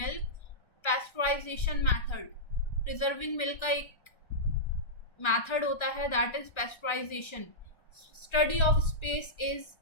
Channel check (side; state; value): right; late; 1.3 ms